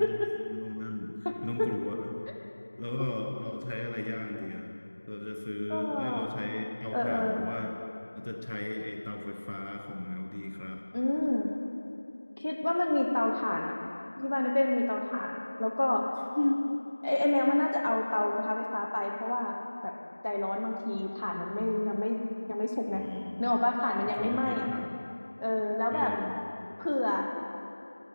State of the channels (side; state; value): both; inverted; correlation -1.00